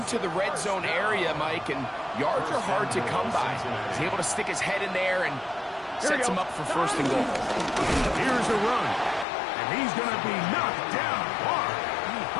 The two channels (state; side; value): drops out; right; at 9.2 s